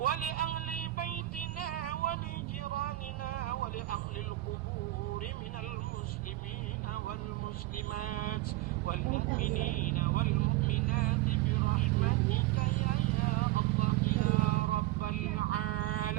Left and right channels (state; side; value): quieter; left; 17.3 dB